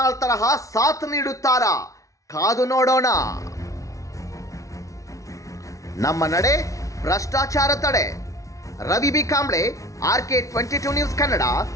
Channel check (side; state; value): right; late; 0.16 ms